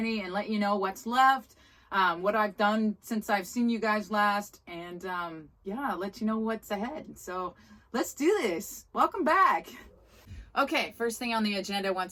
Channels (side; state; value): both; identical; correlation 1.00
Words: and let you know what's left, what I've done since I've seen you guys last, and let you know what's ahead. So let's do this. Welcome back. Okay, first thing on the agenda